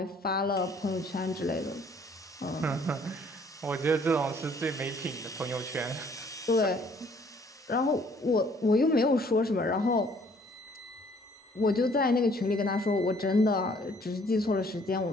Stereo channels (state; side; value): normal; both; correlation 0.60